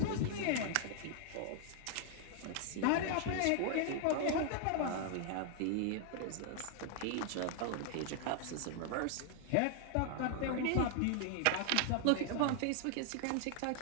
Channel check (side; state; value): both; different; correlation 0.00